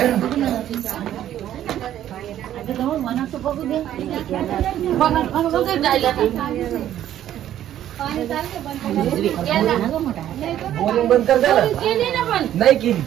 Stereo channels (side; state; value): left; quieter; 11.7 dB